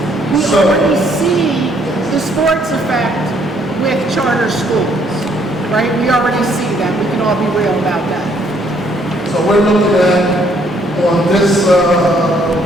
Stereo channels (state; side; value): normal; both; correlation 0.67